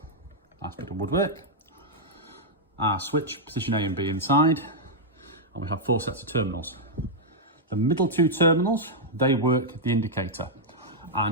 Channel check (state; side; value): normal; both; correlation -0.05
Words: nice bit of woodwork. Our switch, position A and B inside. And we have 4 sets of terminals. The middle 2 terminals, they work the indicator.